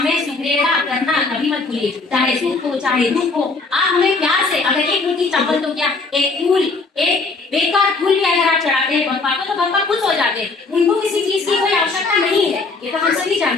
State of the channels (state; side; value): quieter; right; 3.8 dB